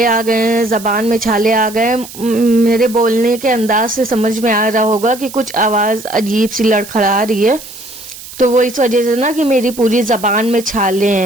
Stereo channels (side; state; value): right; noise; hiss, 15 dB below the sound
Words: आ गए हैं, जबान में छाले आ गए हैं। मेरे बोलने के अंदाज से समझ में आ रहा होगा कि कुछ आवाज अजीब सी लड़खड़ा रही है। तो वो इस वजह से ना कि मेरी पूरी जबान में छाले